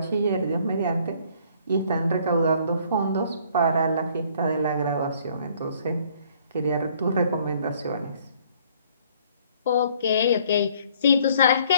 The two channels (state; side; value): inverted; both; correlation -0.60